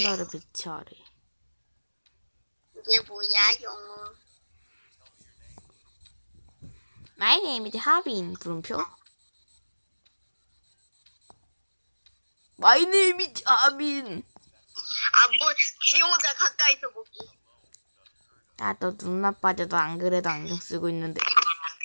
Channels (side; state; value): both; inverted; correlation -1.00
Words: 배치하래. 이게 뭐야 영어? My name is 하빈. 물음표. My name is 하빈. 아뭐 지 혼자 가까이서 보기. 나도 눈 나빠져도 안 그래도 안경 쓰고 있는데.